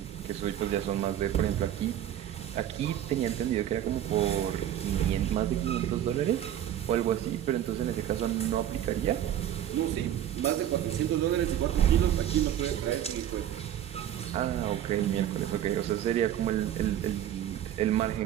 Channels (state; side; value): quieter; left; 11.2 dB